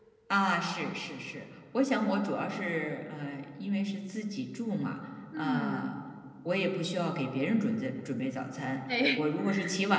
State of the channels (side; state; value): both; identical; correlation 1.00